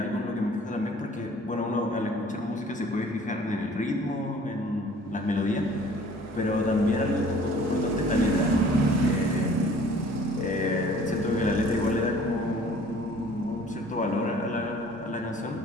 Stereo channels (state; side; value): normal; both; correlation 0.51